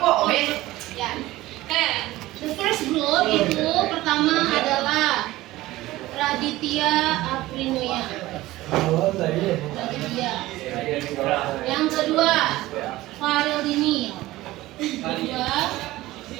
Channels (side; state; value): left; quieter; 17.4 dB